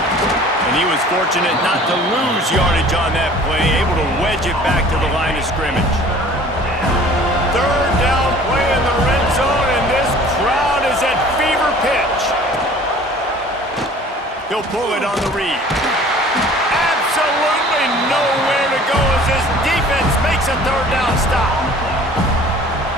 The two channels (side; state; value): both; normal; correlation 0.49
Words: And he was fortunate not to lose yardage on that play, able to wedge it back to the line of scrimmage. 3rd down play in the red zone, and this crowd is at fever pitch. He'll pull it on the read. Absolutely nowhere to go as this defense makes a 3rd down stop.